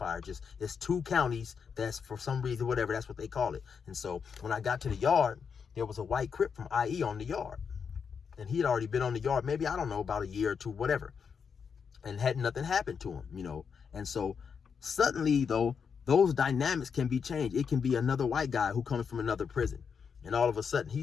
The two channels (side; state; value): right; quieter; 6.4 dB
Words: Just it's 2 counties that's for some reason, whatever, that's what they call it. And so when I got to the yard, there was a white Crip from IE on the yard. And he had already been on the yard, maybe, I don't know, about a year or 2, whatever. And had nothing happened to him, you know. And so suddenly, though, those dynamics can be changed. It can be another white guy who comes from another prison. And all of a sudden, he